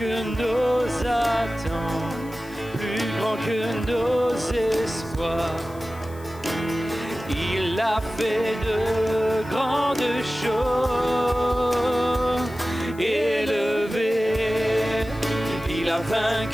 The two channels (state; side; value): noise; left; hiss, 23 dB below the sound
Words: nos attentes, plus grand que nos espoirs. Il a fait de grandes choses, élevé, il a